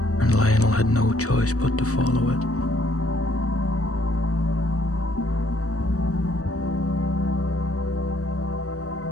and Lionel had no choice but to follow it.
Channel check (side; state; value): right; late; 0.66 ms